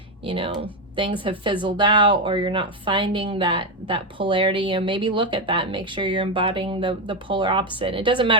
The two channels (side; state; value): both; normal; correlation 0.08